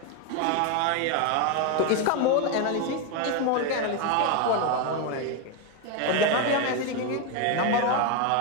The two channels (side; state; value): both; different; correlation 0.02